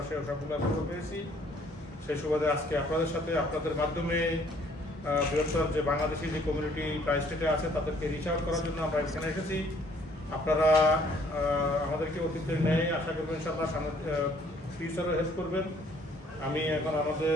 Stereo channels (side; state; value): both; normal; correlation 0.61